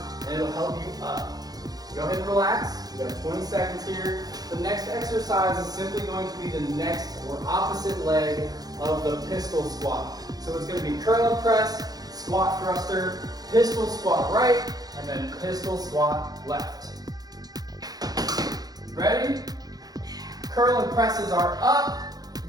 and it'll help you up. Go ahead and relax. You got 20 seconds here. The next exercise is simply going to be the next or opposite leg of the pistol squat. So it's going to be curl and press, squat thruster, pistol squat right, and then pistol squat left. Ready? Curl and presses are up. You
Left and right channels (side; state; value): left; late; 0.19 ms